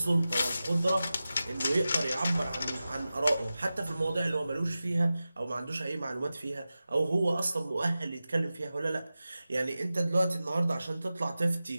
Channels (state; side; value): inverted; both; correlation -0.94